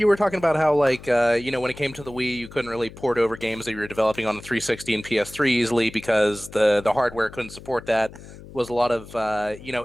were talking about how, like, when it came to the Wii, you couldn't really port over games that you were developing on the 360 and PS3 easily because the hardware couldn't support that. Was a lot of,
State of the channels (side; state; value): left; noise; hum, 17 dB below the sound